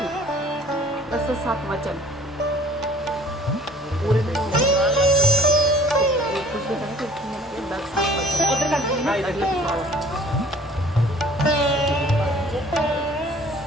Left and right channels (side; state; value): both; normal; correlation 0.52